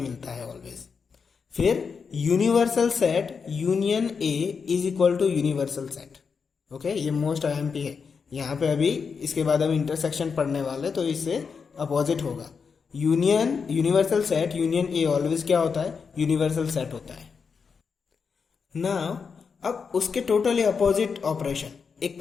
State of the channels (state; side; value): quieter; right; 5.7 dB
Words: है ऑलवेज। फिर universal set union A is equal to universal set. Okay, ये मोस्ट आईएमपी है यहाँ पे। अभी इसके बाद हम इंटरसेक्शन पढ़ने वाले, तो इससे अपोजिट होगा। Union universal set union a always क्या होता है, यूनिवर्सल सेट होता है। नाउ अब उसके टोटली अपोजिट ऑपरेशन, एक